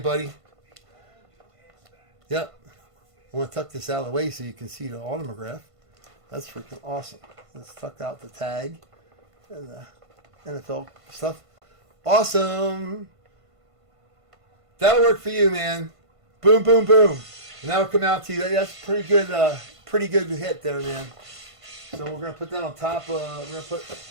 buddy. Yep. I want to tuck this out of the way so you can see the autograph. That's freaking awesome. Let's tuck out the tag and the NFL stuff. Awesome. That'll work for you, man. Boom, boom, boom. And that'll come out to you. That's pretty good hit there, man. So we're gonna put that on top. We're gonna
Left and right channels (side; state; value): left; late; 1.5 ms